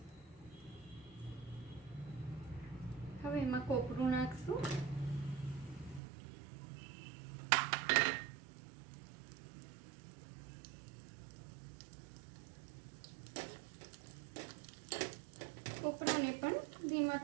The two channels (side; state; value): left; drops out; at 6.0 s